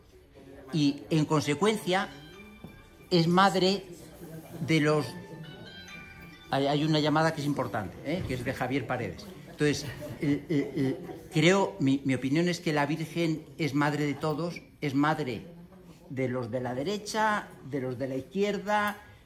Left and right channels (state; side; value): identical; both; correlation 1.00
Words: y, en consecuencia, es madre de los... Hay una llamada que es importante, que es de Javier Paredes. Entonces, creo, mi opinión es que la Virgen es madre de todos, es madre de los de la derecha, de los de la izquierda,